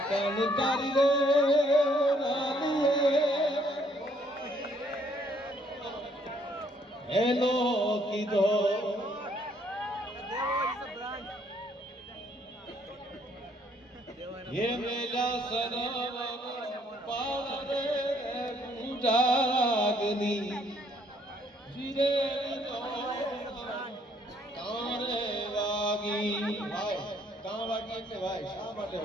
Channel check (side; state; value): both; normal; correlation 0.66